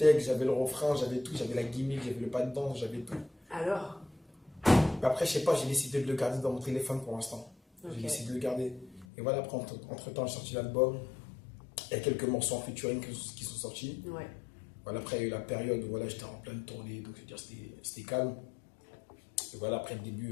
j'avais le refrain, j'avais tout, j'avais la gimmick, j'avais le pas de danse, j'avais tout. Alors? Mais après, je sais pas, j'ai décidé de le garder dans mon téléphone pour l'instant. Ok. J'ai décidé de le garder. Et voilà, après, entre temps, j'ai sorti l'album. Il y a quelques morceaux en featuring qui sont sortis. Ouais. Voilà, après, il y a eu la période où voilà, j'étais en pleine tournée, donc c'était calme. Et voilà, après le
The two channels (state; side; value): drops out; right; at 9.1 s